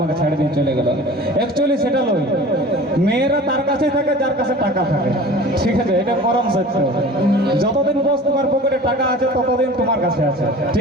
ছাড়ে দিয়ে চলে গেল। অ্যাকচুয়ালি সেটা নয়, মেয়েরা তার কাছেই থাকে যার কাছে টাকা থাকে, ঠিক আছে? এটা পরম সত্য। যতদিন বস তোমার পকেটে টাকা আছে ততদিন তোমার কাছে আছে,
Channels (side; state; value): both; normal; correlation 0.41